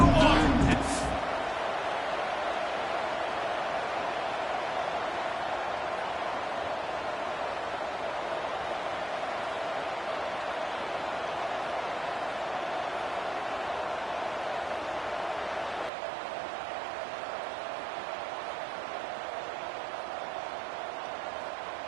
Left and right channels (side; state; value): left; drops out; at 15.9 s